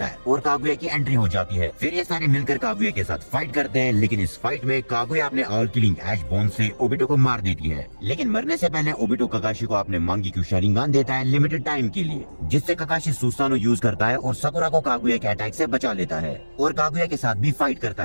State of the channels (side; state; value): both; inverted; correlation -1.00